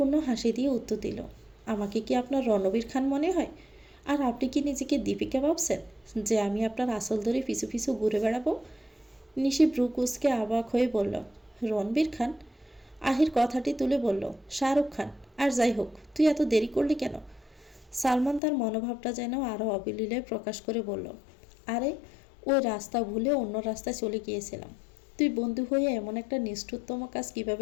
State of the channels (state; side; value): drops out; right; at 18.4 s